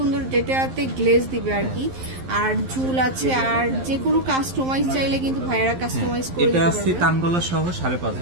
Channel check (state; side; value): late; left; 11 ms